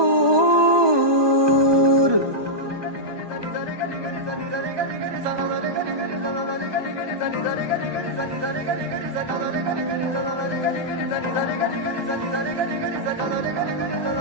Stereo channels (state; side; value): late; left; 1.2 ms